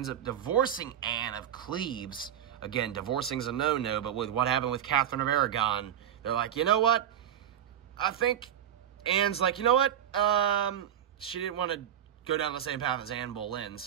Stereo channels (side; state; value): left; quieter; 10.0 dB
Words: up divorcing Anne of Cleves. Again, divorcing's a no-no, but with what happened with Catherine of Aragon, they're like, you know what, I think Anne's like, you know what, she didn't want to go down the same path as Anne Boleyn,